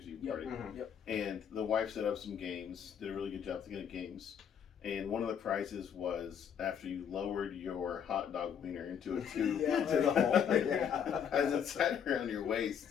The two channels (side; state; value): right; quieter; 8.0 dB